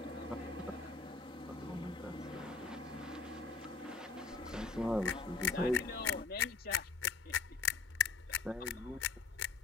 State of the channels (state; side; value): quieter; right; 4.3 dB